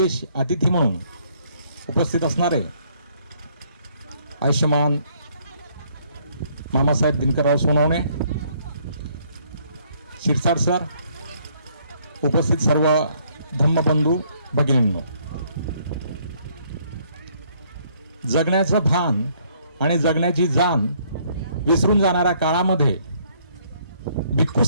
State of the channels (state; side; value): inverted; both; correlation -0.66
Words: अतिथी म्हणून उपस्थित असणारे आयुष्यमान मामासाहेब दिनकरराव सोनवणे, शिरसाट सर, उपस्थित सर्व धम्मबंधू भगिनींनो, जगण्याचं भान आणि जगण्याची जाण विसरून जाणाऱ्या काळामध्ये भिक्खू